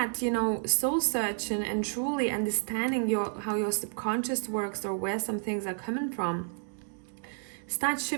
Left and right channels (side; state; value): left; silent; 57 dB below the other